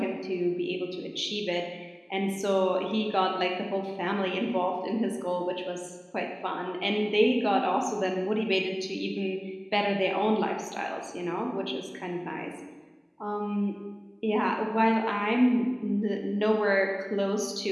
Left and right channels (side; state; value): both; identical; correlation 1.00